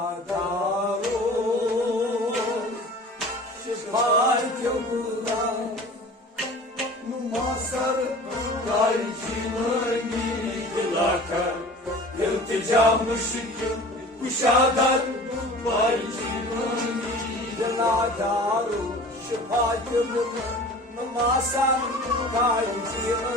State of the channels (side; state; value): both; normal; correlation 0.41